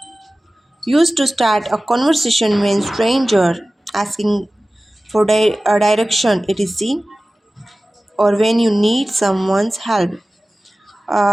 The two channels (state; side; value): normal; both; correlation 0.97